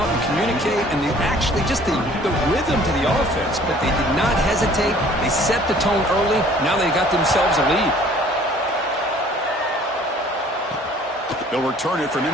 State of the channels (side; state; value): both; normal; correlation 0.54